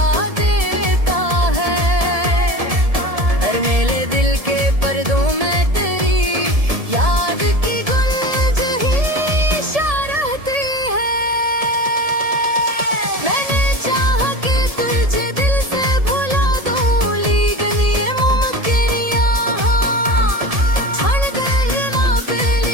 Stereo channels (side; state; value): left; late; 1.7 ms